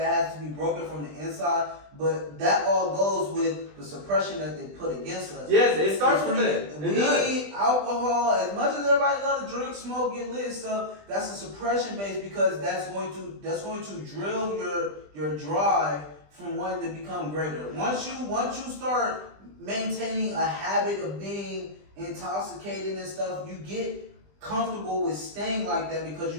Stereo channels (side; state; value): left; late; 20 ms